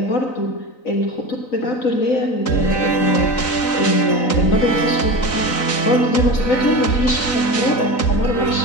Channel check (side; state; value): right; late; 3.9 ms